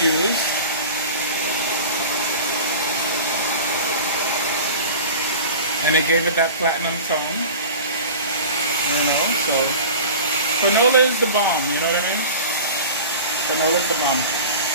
And it gave it that platinum tone. You know, so Fanola is the bomb, you know what I mean? Fanola is the bomb.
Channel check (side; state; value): both; inverted; correlation -0.36